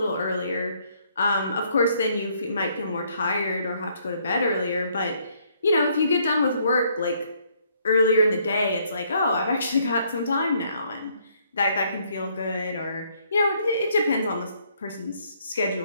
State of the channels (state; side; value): inverted; both; correlation -0.68